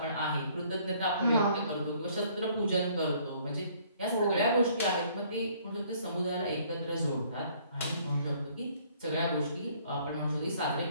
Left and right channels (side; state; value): both; inverted; correlation -0.61